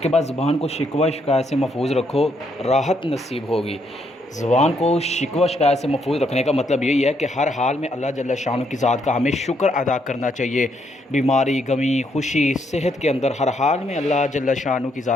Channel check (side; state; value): both; normal; correlation 0.74